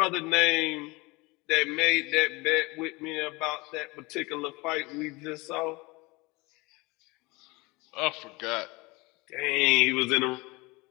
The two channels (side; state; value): right; quieter; 24.3 dB